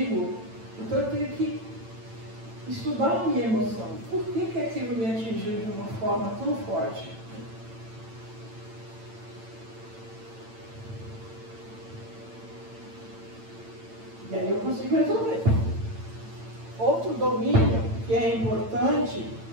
Então eu tenho que estudar a minha emoção. Por que aquilo me atingiu de uma forma tão forte? E aí eu consigo resolver. Outro domínio que é importante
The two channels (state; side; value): late; left; 8.9 ms